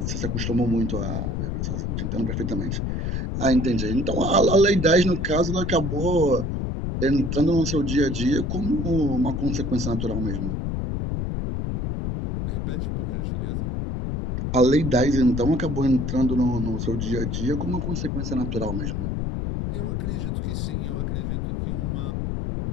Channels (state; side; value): noise; left; rumble, 1 dB below the sound